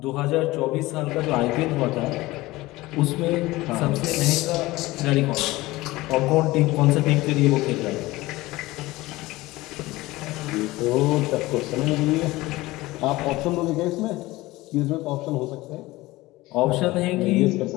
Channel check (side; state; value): right; quieter; 19.3 dB